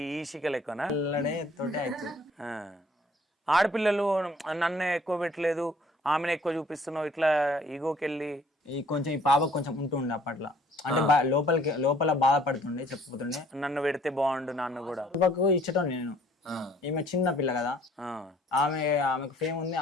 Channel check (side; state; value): both; normal; correlation 0.58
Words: సిక్కలు ఎక్కువనా? తోటే అవుతుంది. ఆడపిల్లలు నన్నే ఎక్కువ పెట్టలేదు, ఆమెను ఎక్కువ చూపిస్తున్నావు, ఇట్లా ఈగోకి వెళ్ళి ఈ కొంచెం ఈ పాప కొంచెం ఉంటుండే అప్పట్లో, అంటే లోపల బాధపడుతుండే, చెప్పుతుండే నన్ను పెడితే బాగుండు నాన్న కూడా. పాపకు ఇచ్చటం నేను, ఈమె చిన్న పిల్ల కదా, ఆమెకు ఫేమ్ ఉంది,